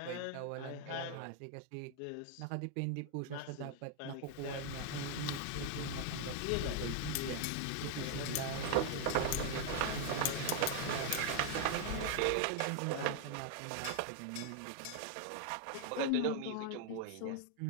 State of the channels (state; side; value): different; both; correlation 0.00